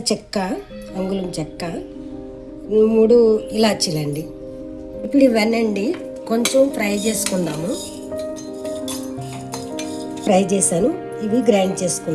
చెక్క, అంగుళం చెక్క, 3 ఇలాచీలండి. ఇప్పుడు ఇవన్నీ కొంచెం ఫ్రై చేసుకుందాము. ఫ్రై చేశాను, ఇవి గ్రైండ్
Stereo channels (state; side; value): identical; both; correlation 1.00